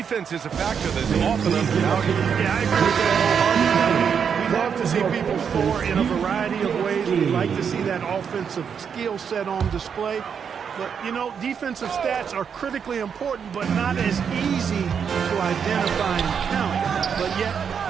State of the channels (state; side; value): quieter; left; 7.1 dB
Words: is a factor that's often undervalued. Yeah, I agree with that wholeheartedly. We love to see people score in a variety of ways. We like to see that offensive skill set on display. But, you know, defensive stats are critically important, but not as easy to identify and count. But yet,